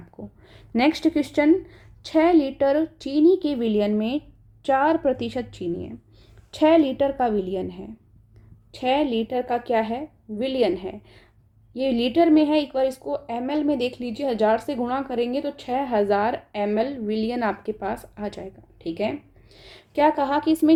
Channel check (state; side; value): identical; both; correlation 1.00